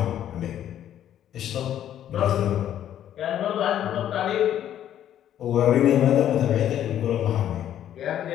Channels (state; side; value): quieter; right; 10.9 dB